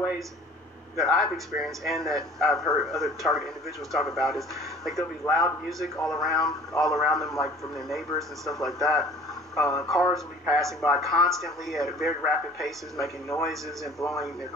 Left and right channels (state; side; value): normal; both; correlation 0.47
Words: that I've experienced and that I've heard other targeted individuals talk about is like there'll be loud music all around them, like from their neighbors and stuff like that. Cars will be passing by constantly at very rapid paces, making noises and blowing their